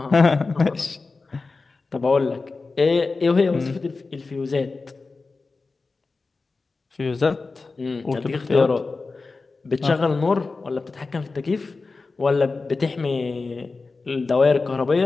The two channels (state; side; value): quieter; right; 3.9 dB